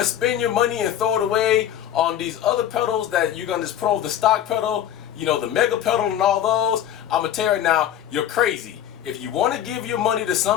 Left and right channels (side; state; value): right; quieter; 10.7 dB